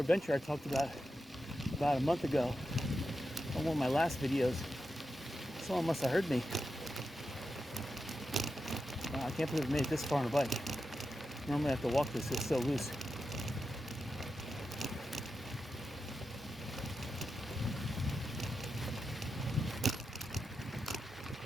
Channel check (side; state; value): both; normal; correlation 0.89